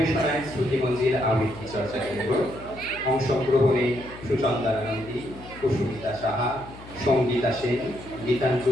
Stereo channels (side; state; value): left; noise; hum, 17 dB below the sound